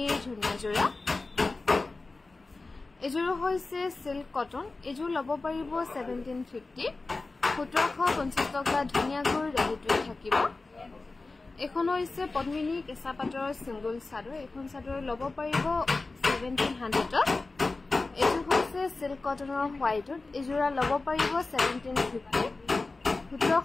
ধুনিয়া জোৰা এজোৰ হৈছে সিল্ক কটন এজোৰ ল'ব পাৰিব 1750 1750 টকা ধুনিয়াকৈ ৰেডিটুৱে থাকিব এখন হৈছে পদ্মিনী কেঁচা পাটৰ সিঙ্গল চাদৰ এখন চাদৰ ল'ব পাৰিব 1700 এজোৰ হৈছে সিল্ক কটনৰ হোৱাইটত এজোৰা ল'ব পাৰিব 1750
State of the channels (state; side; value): quieter; right; 3.5 dB